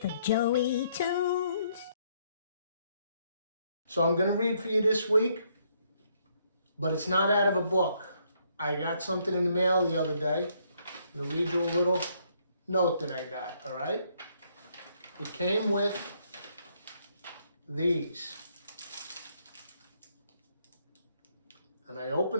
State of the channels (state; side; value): inverted; both; correlation -0.71